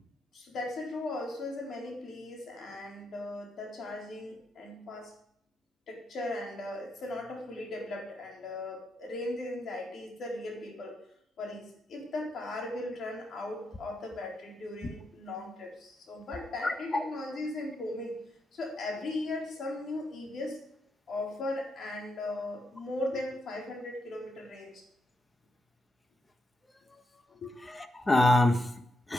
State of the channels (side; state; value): both; normal; correlation 0.82